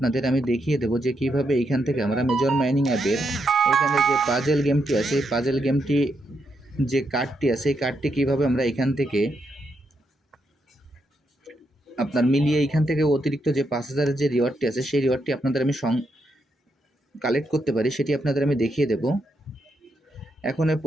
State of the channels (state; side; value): normal; both; correlation 0.81